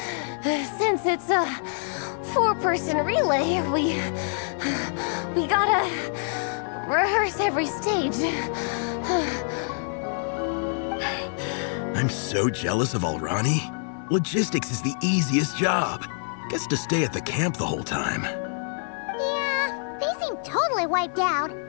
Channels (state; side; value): silent; right; 61 dB below the other